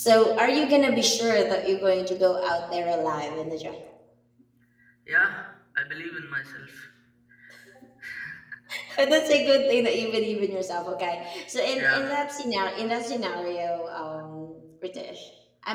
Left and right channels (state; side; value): identical; both; correlation 1.00